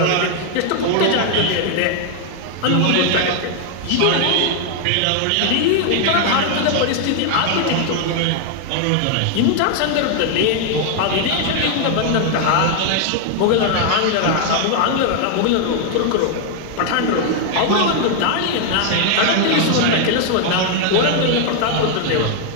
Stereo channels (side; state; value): both; different; correlation 0.00